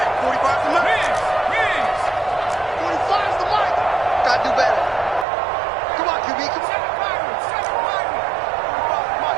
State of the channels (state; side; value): drops out; left; at 5.2 s